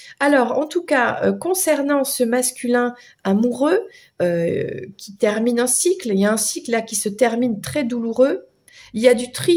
Alors, en tout cas, concernant ce masculin amoureux qui termine un cycle, il y a un cycle là qui se termine très douloureux. il y a du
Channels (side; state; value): both; identical; correlation 1.00